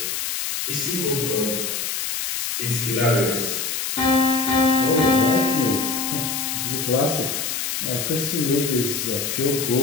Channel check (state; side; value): noise; left; hiss, 2 dB below the sound